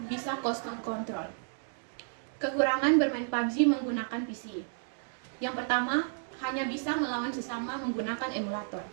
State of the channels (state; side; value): silent; left; digital silence